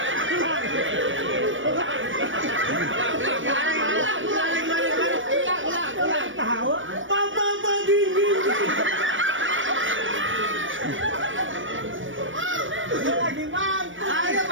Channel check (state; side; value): late; left; 0.56 ms